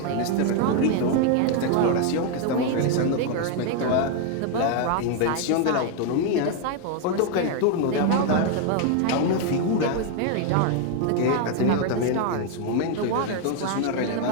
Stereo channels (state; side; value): different; both; correlation 0.01